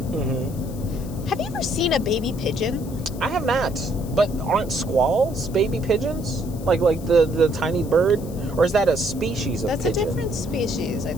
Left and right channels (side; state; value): left; noise; hiss, 19 dB below the sound